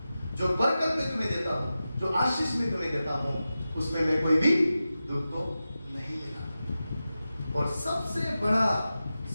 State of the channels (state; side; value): inverted; both; correlation -0.93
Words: जो बरकत में तुम्हें देता हूं, जो आशीष में तुम्हें देता हूं, उसमें मैं कोई भी दुख को नहीं मिला। और सबसे